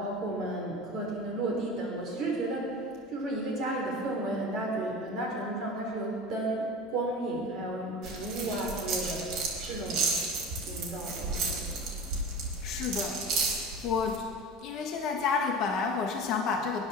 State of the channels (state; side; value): normal; both; correlation 0.33